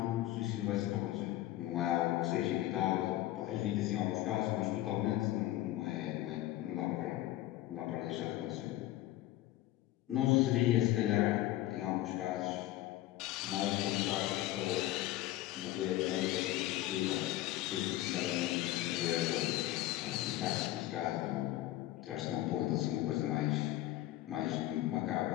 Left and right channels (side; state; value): right; quieter; 15.4 dB